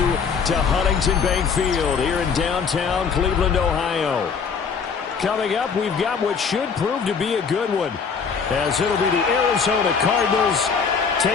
to Huntington Bank Field here in downtown Cleveland, Ohio. Coming up, we've got what should prove to be a good one, as it'll be the Arizona Cardinals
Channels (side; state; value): right; quieter; 5.9 dB